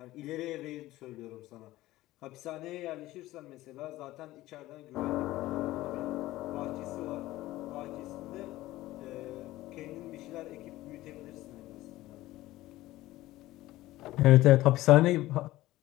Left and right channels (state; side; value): quieter; right; 16.8 dB